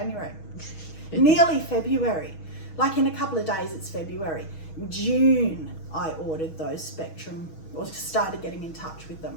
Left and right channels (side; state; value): right; late; 6.3 ms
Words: Nearly February. Like in a couple of days it's February. June I ordered those Spectrum, or started getting in touch with